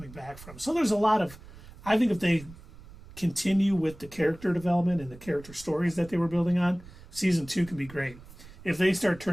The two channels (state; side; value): noise; right; rumble, 19 dB below the sound